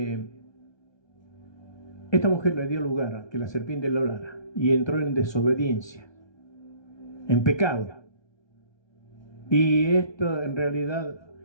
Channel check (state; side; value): late; right; 1.3 ms